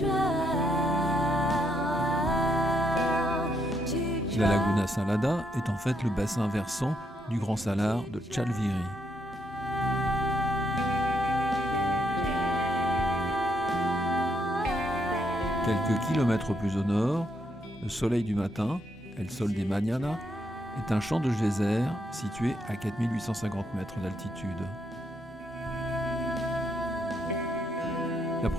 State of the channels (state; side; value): normal; both; correlation 0.76